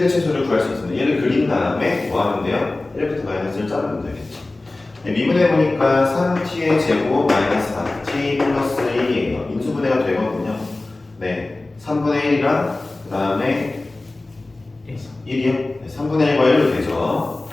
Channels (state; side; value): quieter; right; 3.0 dB